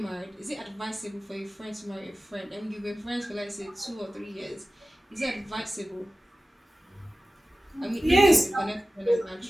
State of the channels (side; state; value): both; normal; correlation 0.96